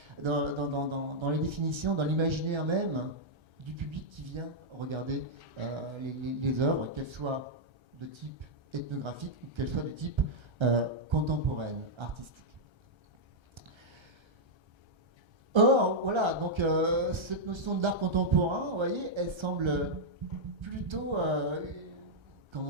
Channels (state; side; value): late; left; 1.3 ms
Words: les définitions, dans l'imaginaire même du public qui vient regarder les œuvres, qu'elles soient de type ethnographiques ou qu'elles soient de type contemporaine, artistique. Or, voilà, donc cette notion d'art contemporain, vous voyez, elle semble plutôt,